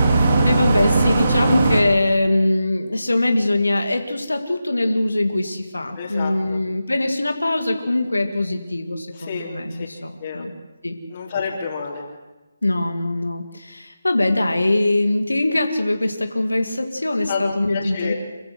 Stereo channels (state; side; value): inverted; both; correlation -0.91